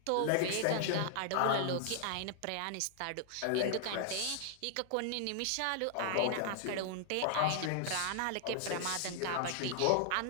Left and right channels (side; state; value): both; different; correlation 0.00